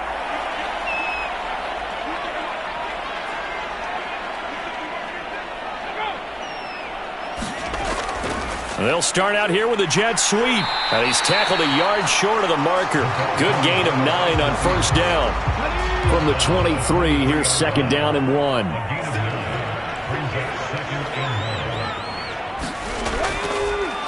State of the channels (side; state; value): both; identical; correlation 1.00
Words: They'll start out here with a jet sweep. And he's tackled a yard short of the marker. Good gain of 9 on first down. From the 23, here's second down and 1.